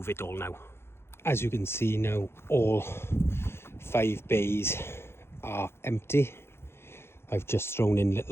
it all now. As you can see now, all 5 bays are empty. I've just thrown in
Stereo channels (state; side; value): late; right; 0.12 ms